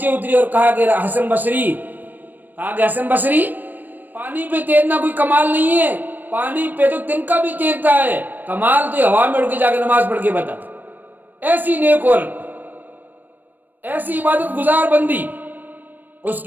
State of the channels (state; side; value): late; left; 0.090 ms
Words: اتری اور کہا کہ حسن بصری پانی پہ تیرنا کوئی کمال نہیں ہے، پانی پہ تو تنکا بھی تیرتا ہے، کمال تو ہوا میں اڑ کے جا کے نماز پڑھ کے بتا۔ ایسی نیک عورت، ایسی عبادت گزار بندی، اس